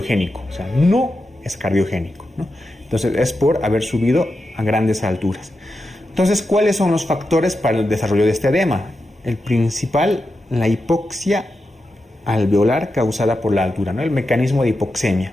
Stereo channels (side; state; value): both; normal; correlation 0.89